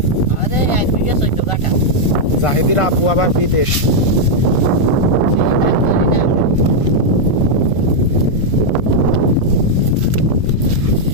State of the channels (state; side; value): late; right; 1.5 ms